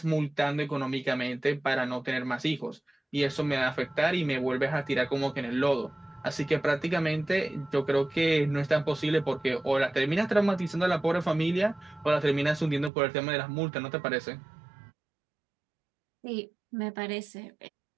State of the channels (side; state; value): left; drops out; at 12.9 s